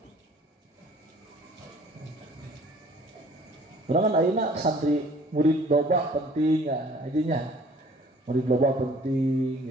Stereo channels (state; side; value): normal; both; correlation 0.54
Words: Orang kan ayeuna santri murid loba penting ya, ajinya. Murid loba